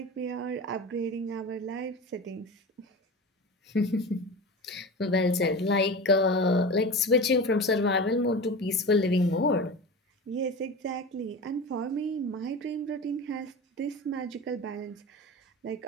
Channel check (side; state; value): both; normal; correlation 0.30